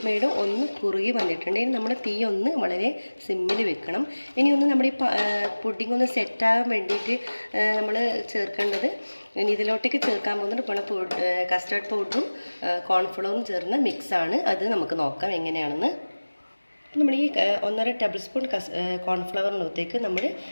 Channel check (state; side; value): inverted; both; correlation -1.00